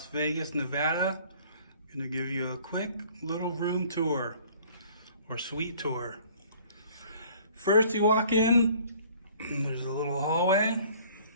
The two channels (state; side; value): inverted; both; correlation -0.54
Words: Vegas, Nevada. I'm going to give you a quick little room tour or suite tour. First you walk in, there's a little hallway.